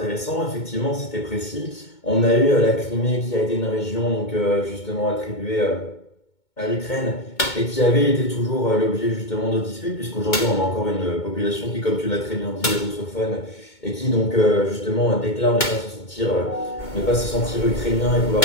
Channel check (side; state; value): right; late; 2.2 ms